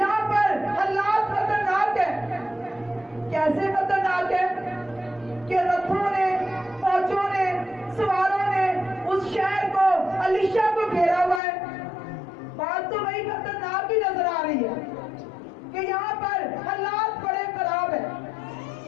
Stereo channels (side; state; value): right; drops out; at 11.4 s